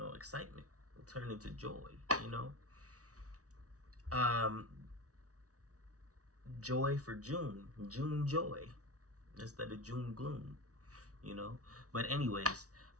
Will turn into joy. You know, um, joy for June joy instead of June gloom. But anyways,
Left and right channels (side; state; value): left; late; 0.67 ms